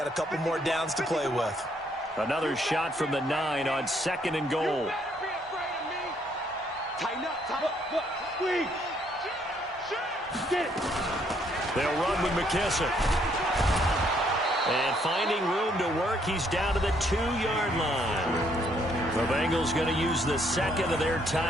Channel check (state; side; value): normal; both; correlation 0.69